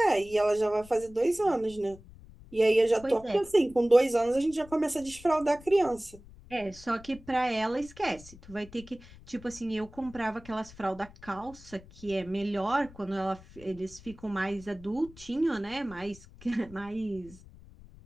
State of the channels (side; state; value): left; noise; rumble, 20 dB below the sound